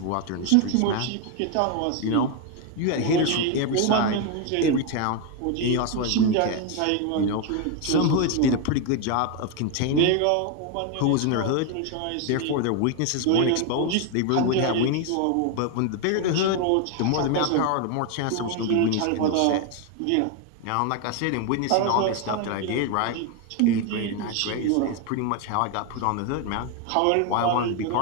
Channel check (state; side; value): different; both; correlation 0.01